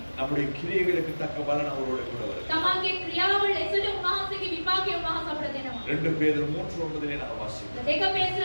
நம்முடைய கிரியைகளுக்கு தக்க பலன் அவரோடு கூட வரும். තමන්ගේ ක්‍රියාව ලෙසට උන්වහන්සේගේ විපාකය උන්වහන්සේ අපිට දෙනවා. 2 பேதுரு 3:9 நம்ம வாசிக்கிறோம். දෙක පේත්‍ර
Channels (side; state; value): both; inverted; correlation -1.00